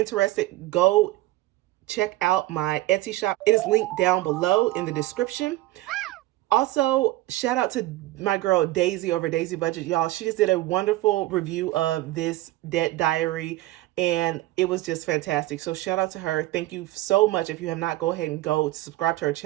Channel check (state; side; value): quieter; left; 17.2 dB